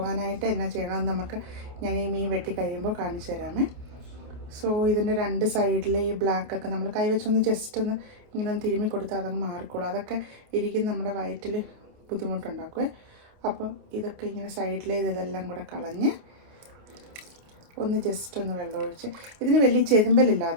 എന്നാ ചെയ്യണമെന്ന് ഞാൻ ഈ മീൻ വെട്ടിക്കഴിയുമ്പോൾ കാണിച്ചു തരാമേ. സോ ഇതിൻ്റെ 2 സൈഡിലെ ഈ ബ്ലാക്കൊക്കെ നമ്മൾ കൈവച്ചൊന്ന് ജസ്റ്റ് ഒന്ന് ഇങ്ങനെ ഒന്ന് തിരുമ്മി കൊടുത്താൽ അതങ്ങ് മാറിക്കോളും. അതൊക്കെ ഇരിക്കും നമ്മുടെ വയറ്റിൽ ബുദ്ധിമുട്ടുണ്ടാക്കുമേ. അപ്പോൾ ഇതൊക്കെ ഇങ്ങനെ സൈഡിലെ ഇതെല്ലാം കൂടെ കളഞ്ഞ് ഒന്ന് ജസ്റ്റ് ഒന്ന് വെള്ളമൊഴിച്ച്. ഇതിന് വലിയ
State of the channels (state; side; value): late; left; 28 ms